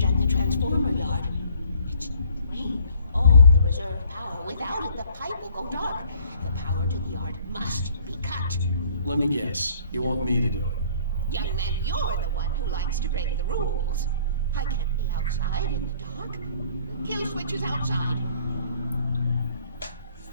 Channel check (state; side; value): inverted; both; correlation -0.57